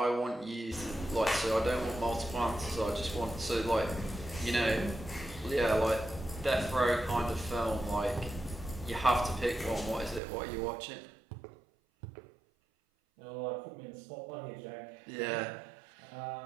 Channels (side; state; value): left; drops out; at 10.2 s